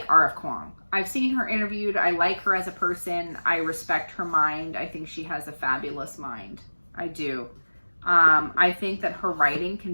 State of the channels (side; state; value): both; inverted; correlation -1.00